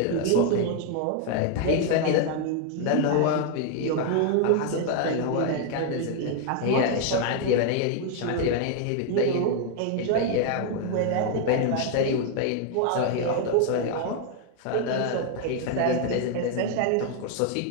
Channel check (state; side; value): different; both; correlation 0.00